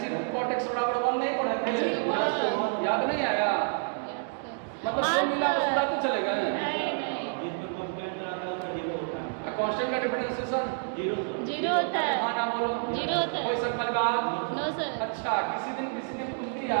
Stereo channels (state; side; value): silent; left; 59 dB below the other